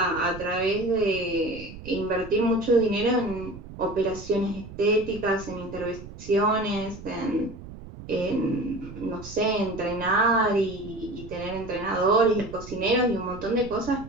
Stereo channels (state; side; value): noise; right; rumble, 14 dB below the sound